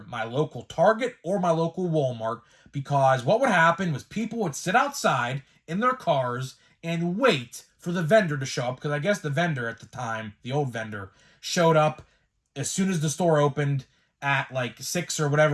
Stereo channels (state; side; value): identical; both; correlation 1.00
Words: my local Target or my local Walmart, because what would happen was people would sit outside in their cars and wait for the vendor to show up, because I guess the vendor at the time, the old vendor, showed up as soon as the store opened at like 6 or